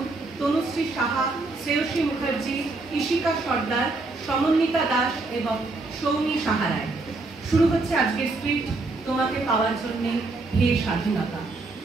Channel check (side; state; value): left; quieter; 3.3 dB